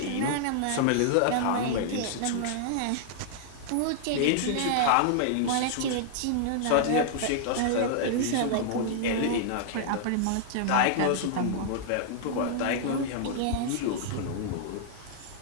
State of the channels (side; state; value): both; different; correlation -0.01